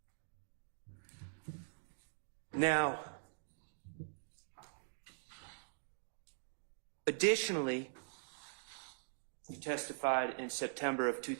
Now, additionally, you testified in September of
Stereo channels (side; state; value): left; silent; digital silence